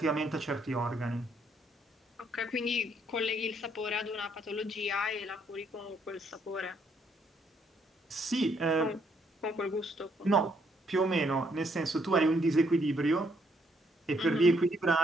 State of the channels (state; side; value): normal; both; correlation 0.71